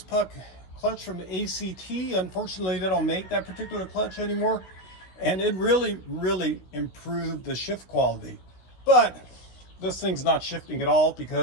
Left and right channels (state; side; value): late; right; 16 ms